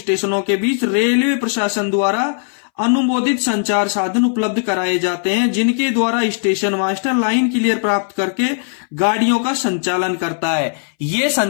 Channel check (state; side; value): silent; right; 63 dB below the other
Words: के बीच रेलवे प्रशासन द्वारा अनुमोदित संचार साधन उपलब्ध कराए जाते हैं, जिनके द्वारा स्टेशन मास्टर लाइन क्लियर प्राप्त करके गाड़ियों का संचालन करता है। ये